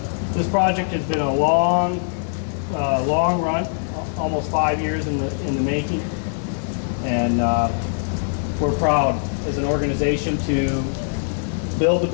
project has been a long run, almost 5 years in the making, and we're proud as an organization to build the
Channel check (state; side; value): silent; right; digital silence